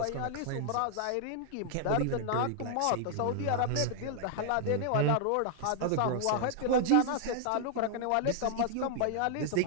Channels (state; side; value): different; both; correlation -0.01